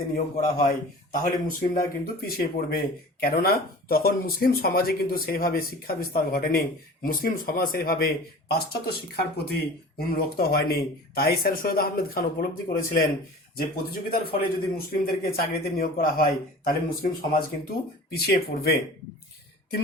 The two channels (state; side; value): normal; both; correlation 0.40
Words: নিয়োগ করা হয়, তাহলে মুসলিমরা কিন্তু পিছিয়ে পড়বে। কেননা তখন মুসলিম সমাজে কিন্তু সেইভাবে শিক্ষা বিস্তার ঘটেনি, মুসলিম সমাজ সেইভাবে পাশ্চাত্য শিক্ষার প্রতি উন্মুক্ত হয়নি। তাই স্যার সৈয়দ আহমেদ খান উপলব্ধি করেছিলেন যে প্রতিযোগিতার ফলে যদি মুসলিমদেরকে চাকরিতে নিয়োগ করা হয়, তাহলে মুসলিম সমাজ কিন্তু পিছিয়ে পড়বে। 3